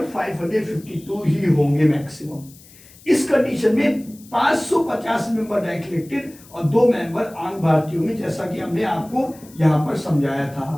552 ही होंगे मैक्सिमम। इस कंडीशन में 550 मेंबर डायरेक्ट इलेक्टेड और 2 मेंबर आम भारतीयों में, जैसा कि हमने आपको यहां पर समझाया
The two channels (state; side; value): noise; left; hiss, 23 dB below the sound